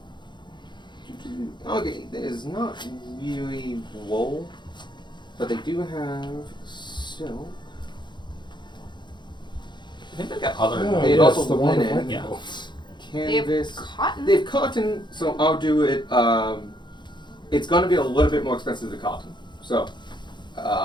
Okay, there's not really wool, but they do have silk. I think they've got other. They yes, also the one with linen. lightning Yeah. bolts. They have Canvas. cotton. They have cotton, so I'll do it. It's going to be a little bit more expensive than cotton. So,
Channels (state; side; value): late; right; 0.22 ms